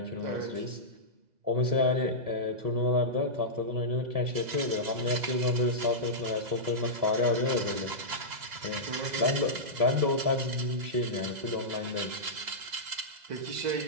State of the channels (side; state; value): left; late; 2.0 ms